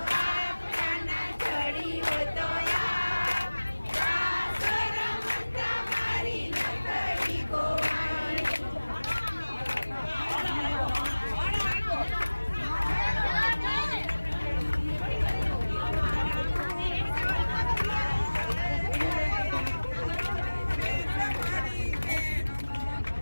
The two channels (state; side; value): inverted; both; correlation -1.00